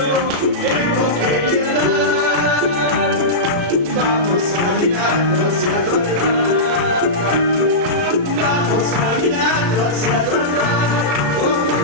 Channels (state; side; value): late; left; 34 ms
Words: tengo que llegar. Vamos caminando hacia tu altar. Vamos caminando hacia tu altar con